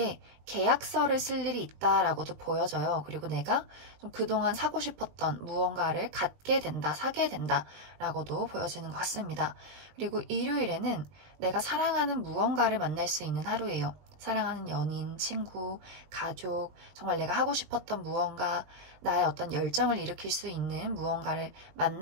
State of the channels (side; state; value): left; late; 20 ms